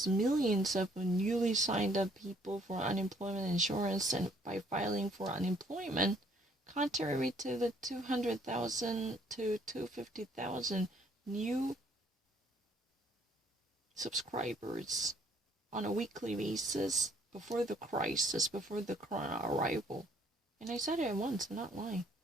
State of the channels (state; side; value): normal; both; correlation 0.63